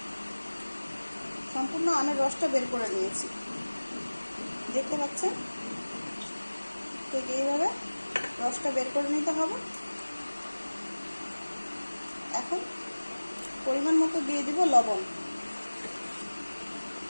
সম্পূর্ণ আমের রসটা বের করে নিয়েছি, দেখতে পাচ্ছেন। ঠিক এইভাবে রসটা বের করে নিতে হবে। এখন পরিমাণ মতো দিয়ে দিব লবণ।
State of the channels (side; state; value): both; inverted; correlation -1.00